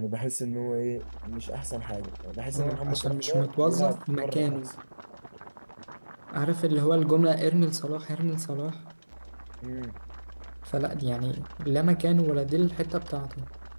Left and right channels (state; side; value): inverted; both; correlation -1.00